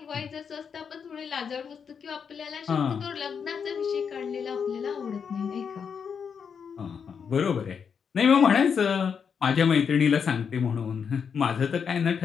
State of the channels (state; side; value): quieter; right; 6.7 dB